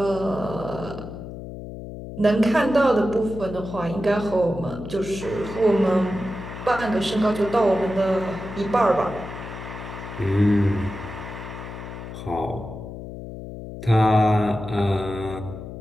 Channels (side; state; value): left; noise; hum, 10 dB below the sound